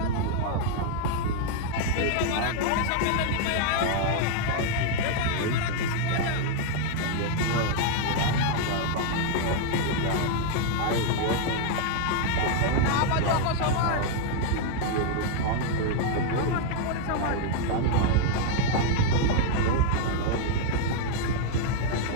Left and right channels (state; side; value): different; both; correlation 0.00